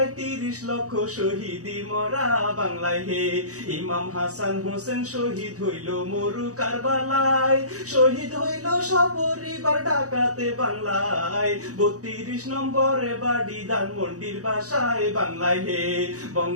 30 লক্ষ শহীদি মরা। বাংলায় হে ইমাম হাসান হোসেন শহীদ হইল মরু কারবালায়, শহীদ হইল সপরিবার ঢাকাতে। বাংলায় 32 নম্বরে বাড়ি ধানমন্ডির বাসায়। বাংলায় হে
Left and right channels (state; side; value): late; left; 0.66 ms